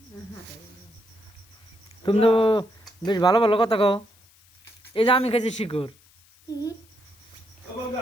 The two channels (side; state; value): left; noise; hiss, 29 dB below the sound